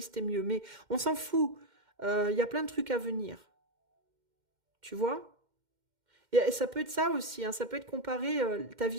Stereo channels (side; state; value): left; late; 2.1 ms